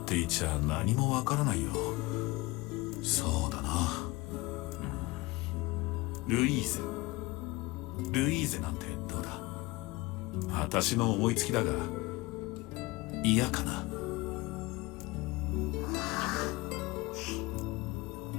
ていちゃ何もわからないよ。そうだな、ルイーゼ。ルイーゼなんてどうだ？私の思いつきだが嫌かな。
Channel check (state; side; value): quieter; right; 21.7 dB